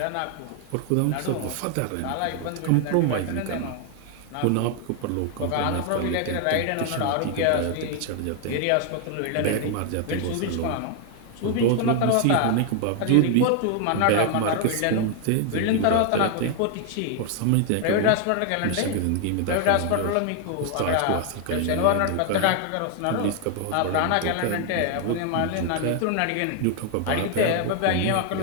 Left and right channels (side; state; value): both; different; correlation 0.00